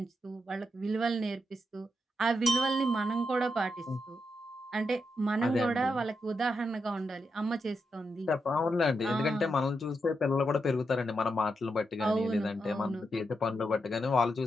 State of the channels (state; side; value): normal; both; correlation 0.84